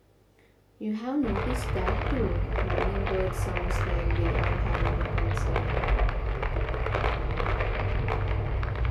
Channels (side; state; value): both; identical; correlation 1.00